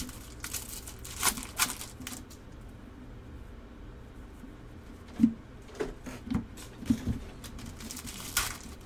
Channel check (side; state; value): both; identical; correlation 1.00